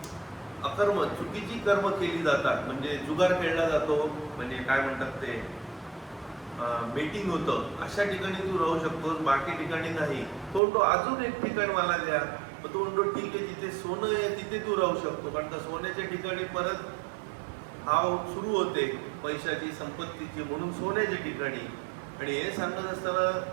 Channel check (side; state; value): left; drops out; at 10.6 s